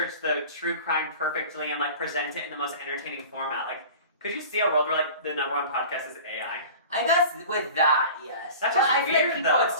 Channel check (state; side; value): inverted; both; correlation -0.39